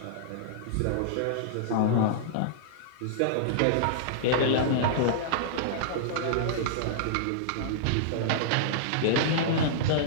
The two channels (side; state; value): both; different; correlation -0.02